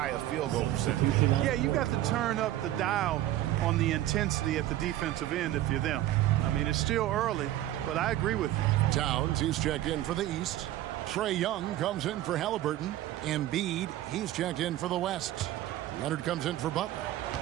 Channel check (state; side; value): quieter; left; 14.1 dB